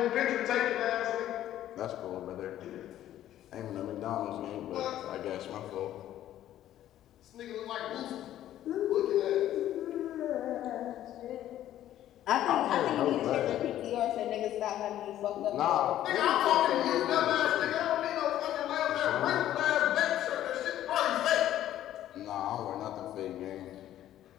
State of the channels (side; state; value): right; quieter; 12.5 dB